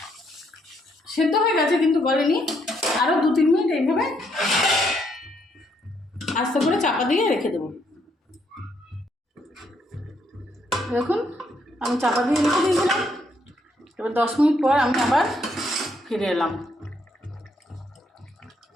সেদ্ধ হয়ে গেছে কিন্তু গলেনি, আরও 2-3 মিনিট এইভাবে আস্তে করে চাপা দিয়ে রেখে দেবো। দেখুন আমি চাপা দিয়ে রেখে দিয়েছিলাম। এবার 10 মিনিট পর আমি আবার ফিরে এলাম।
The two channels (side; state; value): both; normal; correlation 0.73